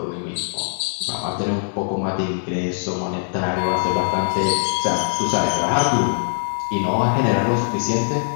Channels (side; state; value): right; silent; 64 dB below the other